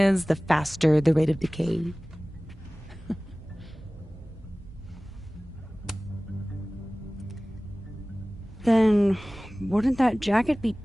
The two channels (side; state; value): both; normal; correlation 0.98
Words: the faster the rate of decay. Then wouldn't that jacket be